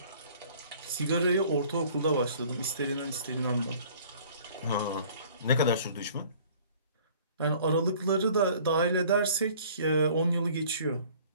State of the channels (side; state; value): both; inverted; correlation -0.52